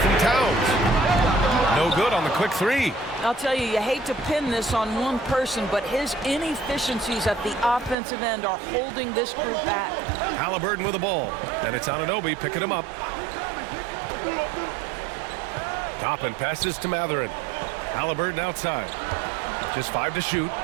Towns. No good on the quick three. I'll tell you, you hate to pin this on one person, but his inefficiencies at the offensive end are holding this group back. Halliburton with the ball, and it's Anunoby picking him up. Toppin passes to Matherin. Halliburton outside. Just 5 to shoot.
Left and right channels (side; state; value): left; drops out; at 8.0 s